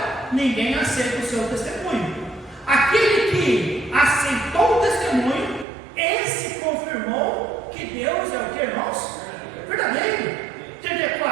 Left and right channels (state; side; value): drops out; left; at 5.7 s